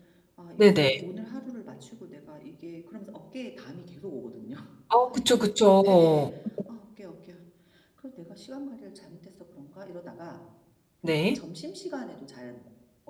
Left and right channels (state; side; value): identical; both; correlation 1.00